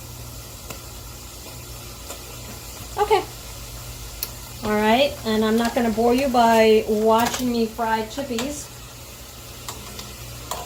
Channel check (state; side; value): identical; both; correlation 1.00